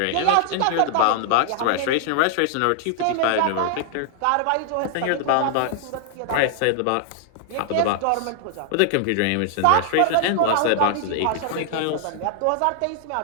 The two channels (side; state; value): both; different; correlation 0.00